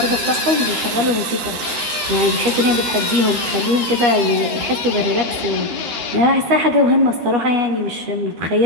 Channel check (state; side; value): late; left; 14 ms